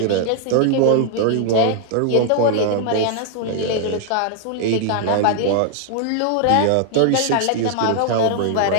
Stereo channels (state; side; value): different; both; correlation 0.00